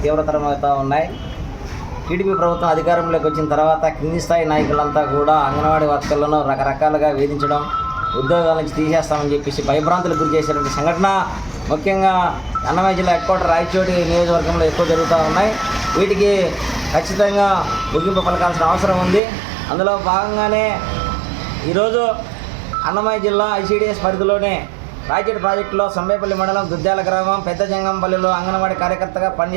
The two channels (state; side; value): drops out; left; at 19.2 s